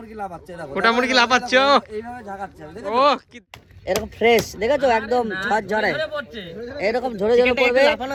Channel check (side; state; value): both; identical; correlation 1.00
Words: লাফাচ্ছে, দেখো গোটা মুরগি লাফাচ্ছে, এইভাবে ঝাঁকাচ্ছে, দেখো ও কি এরকম ফ্রেশ দেখেছো, একদম ঝড় ঝরে এরকম ঝরে ঝরে পড়বে।